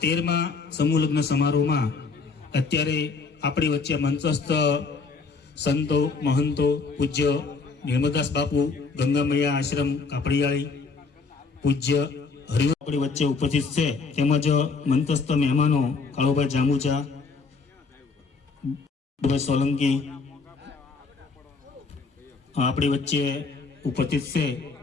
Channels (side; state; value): right; quieter; 4.5 dB